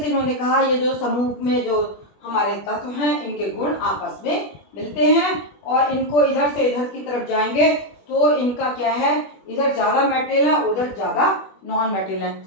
से इन्होंने कहा ये जो समूह में जो हमारे तत्व हैं इनके गुण आपस में मिलते हैं और इनको इधर से इधर की तरफ जाएंगे तो इनका क्या है, इधर ज़्यादा मेटल है उधर ज़्यादा नॉन मेटल है।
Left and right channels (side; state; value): right; late; 21 ms